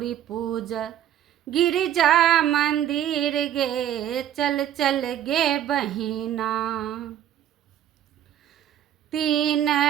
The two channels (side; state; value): left; quieter; 11.0 dB